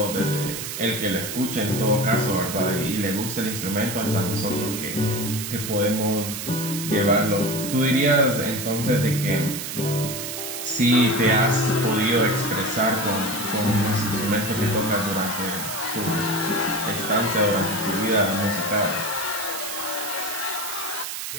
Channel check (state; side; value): noise; right; hiss, 6 dB below the sound